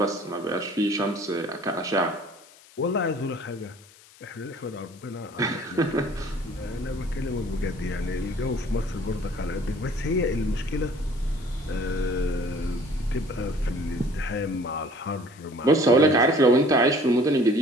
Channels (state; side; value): noise; left; hiss, 24 dB below the sound